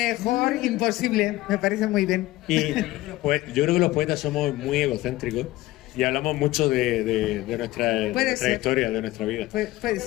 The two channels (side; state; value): right; quieter; 17.6 dB